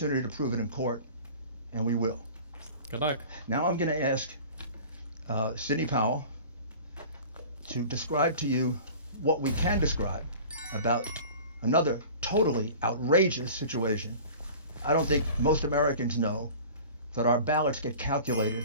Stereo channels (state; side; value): inverted; both; correlation -0.41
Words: to prove it in court, and we will. Good luck. Now I'm going to ask Sidney Powell to describe to you what we can describe about another totally outrageous situation. I don't think most Americans know that our ballots get calculated,